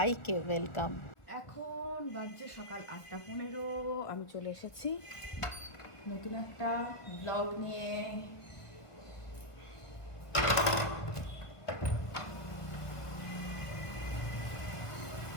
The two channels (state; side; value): late; right; 1.6 ms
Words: ওয়েলকাম। এখন বাজছে সকাল 8:15। আমি চলে এসেছি নতুন একটা ব্লগ নিয়ে।